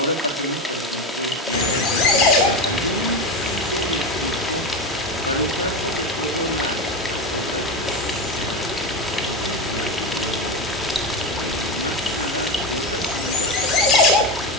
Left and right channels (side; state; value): both; normal; correlation 0.17